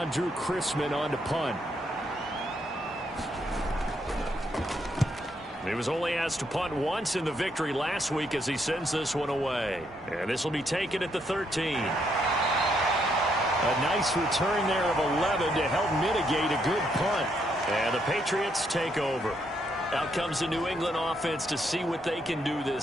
Drew Chrisman on to punt. He was only asked to punt once in the victory last week as he sends this one away. And this will be taken at the 13. A nice return there of 11 to help mitigate a good punt. And the Patriots take over. Out comes the New England offense to see what they can do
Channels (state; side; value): normal; both; correlation 0.75